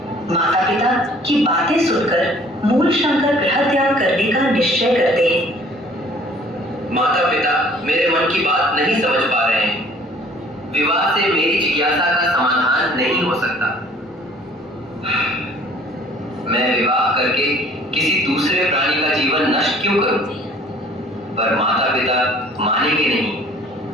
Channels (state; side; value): normal; both; correlation 0.54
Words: माता पिता की बातें सुनकर मूलशंकर गृह त्याग करने का निश्चय करते हैं। माता पिता मेरे मन की बात नहीं समझ पा रहे हैं। विवाह से मेरी जिज्ञासा का समाधान नहीं हो सकता। मैं विवाह करके किसी दूसरे प्राणी का जीवन नष्ट क्यों करूं? पर माता पिता मानेंगे नहीं।